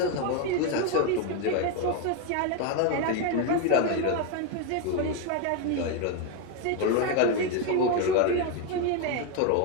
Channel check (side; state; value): both; different; correlation 0.02